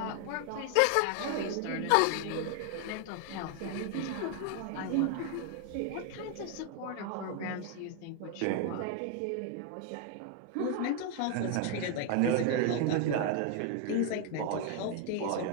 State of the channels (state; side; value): different; both; correlation 0.00